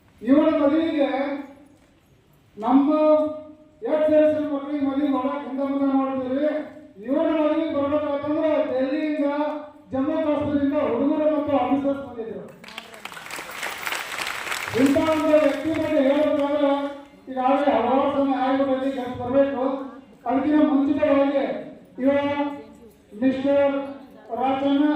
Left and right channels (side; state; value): both; identical; correlation 1.00